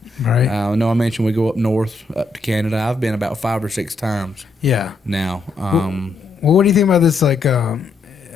Right. I know I mentioned we go up north, up to Canada. I've been about 5 or 6 times. Yeah. Now. Well, what do you think about this? Like,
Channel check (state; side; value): quieter; right; 3.6 dB